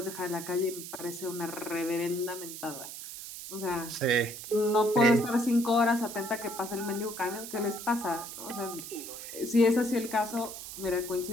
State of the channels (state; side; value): noise; right; hiss, 10 dB below the sound